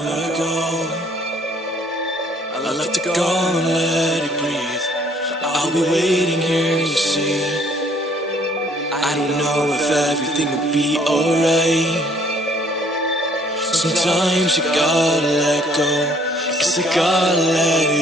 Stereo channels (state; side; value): normal; both; correlation 0.61